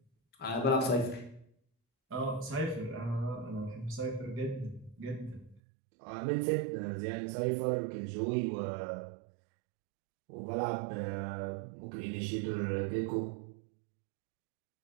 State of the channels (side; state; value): left; drops out; at 5.6 s